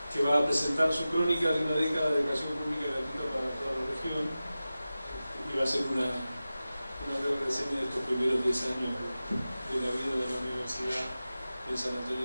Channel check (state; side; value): inverted; both; correlation -0.95